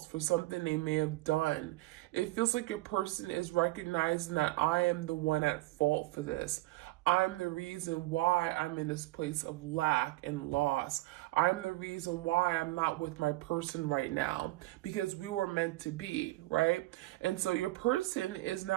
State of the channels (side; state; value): left; quieter; 19.6 dB